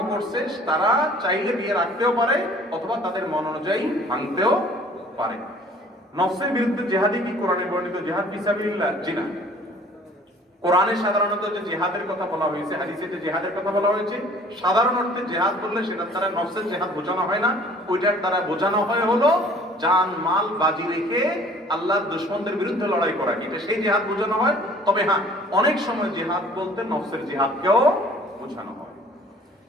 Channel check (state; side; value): normal; both; correlation 0.52